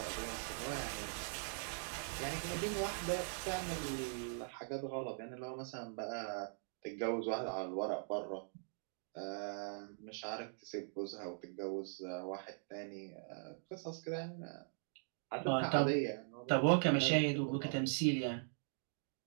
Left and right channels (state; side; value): silent; left; digital silence